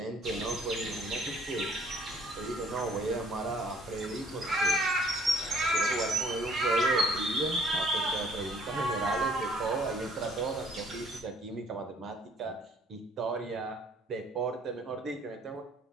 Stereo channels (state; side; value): normal; both; correlation 0.60